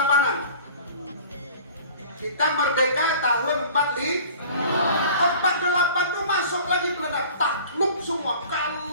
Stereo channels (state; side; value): inverted; both; correlation -0.45